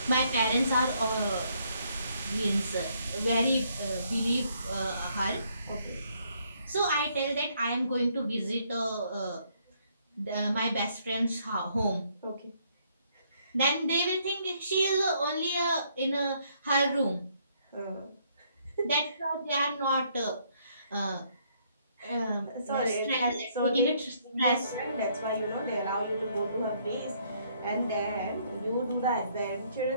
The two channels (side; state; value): both; inverted; correlation -0.69